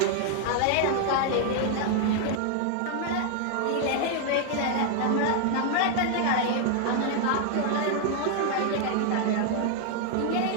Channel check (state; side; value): different; both; correlation 0.00